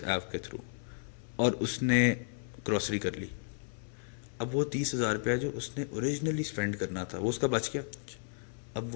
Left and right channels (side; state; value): right; silent; 55 dB below the other